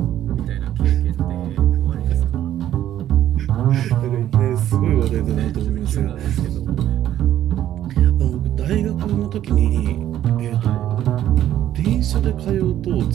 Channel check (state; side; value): quieter; left; 11.9 dB